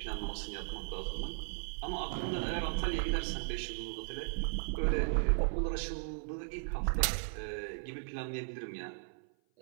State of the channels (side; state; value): left; silent; 53 dB below the other